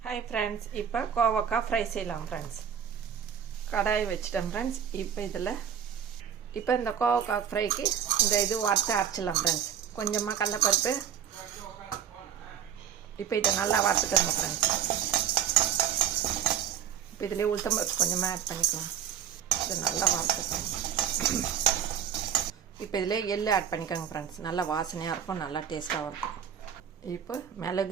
ஹாய் ஃப்ரெண்ட்ஸ், இப்போ கோவக்காய் ஃப்ரை செய்யலாம் ஃப்ரெண்ட்ஸ். கடாய் வச்சுட்டேன் ஃப்ரெண்ட்ஸ். இப்போ இந்த கோவக்காய் ஃப்ரைக்கு இந்த இது வறுத்து அரைச்சிடலாம் ஃப்ரெண்ட்ஸ். கொஞ்சமாக கடலைப்பருப்பு, இப்போ இதை நல்லா வறுத்துக்கணும் ஃப்ரெண்ட்ஸ். இப்போ இதிலே உளுத்தம்பருப்பு கொஞ்சமாக ஆட் பண்ணிக்கலாம். இதை நல்லா வறுத்துக்கணும். இப்போ இதிலே எள்ளு ஆட் பண்ணிக்கோங்க ஃப்ரெண்ட்ஸ். நல்லா வாசனையாக இருக்கும், நல்லா டேஸ்ட்டாகவும் இருக்கும். இப்போ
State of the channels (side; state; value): left; quieter; 8.8 dB